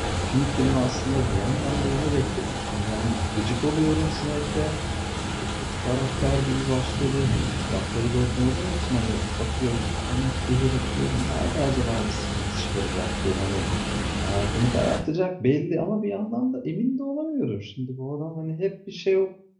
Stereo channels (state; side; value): identical; both; correlation 1.00